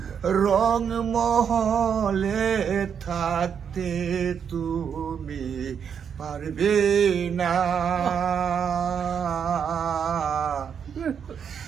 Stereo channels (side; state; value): left; quieter; 7.4 dB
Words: রংমহলে থাকতে তুমি পারবে না